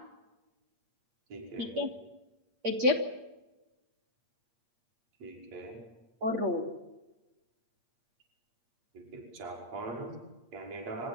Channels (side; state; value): left; late; 8.6 ms